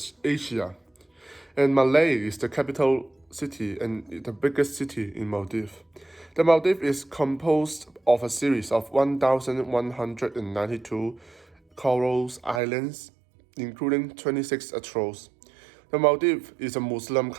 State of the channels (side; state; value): left; drops out; at 12.6 s